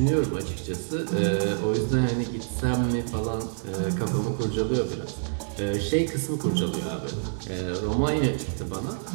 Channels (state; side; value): silent; left; digital silence